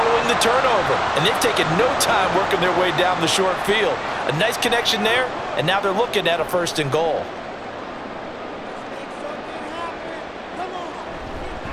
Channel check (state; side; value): identical; both; correlation 1.00